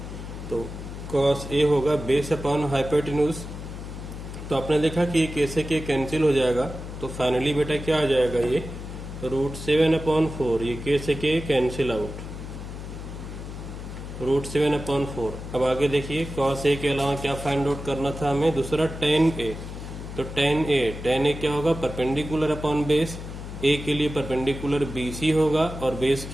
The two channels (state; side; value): noise; left; hum, 9 dB below the sound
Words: तो cos ए होगा बेस अपॉन हाइपोटेन्यूज। तो आपने देखा कि ये कैसे के कैंसिल हो जाएगा, तो फाइनली बेटा क्या आ जाएगा, ये √7/4। ये कैसे के कैंसिल आउट, √7/4। अब आगे देखिए, cos ए के अलावा क्या फाइंड आउट करना था हमें, दूसरा tan ए। तो tan ए क्या होगा, परपेंडिकुलर अपॉन बेस। ए के लिए परपेंडिकुलर BC होगा और बेस